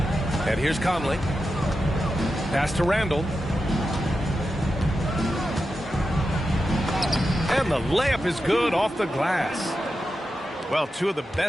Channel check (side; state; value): both; normal; correlation 0.90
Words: And here's Conley. Pass to Randall. And the layup is good off the glass. Well, two of the